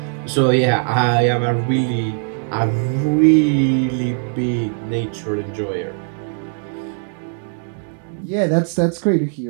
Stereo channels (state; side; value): silent; left; digital silence